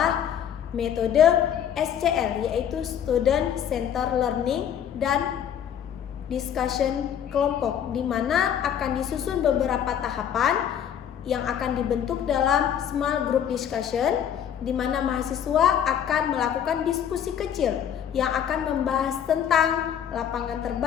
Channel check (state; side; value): quieter; right; 9.1 dB